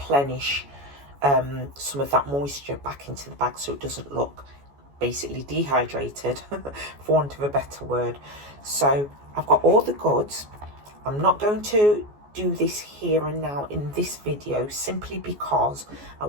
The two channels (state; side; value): late; left; 14 ms